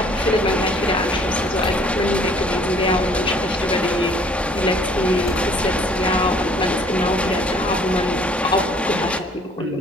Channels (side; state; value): both; normal; correlation 0.57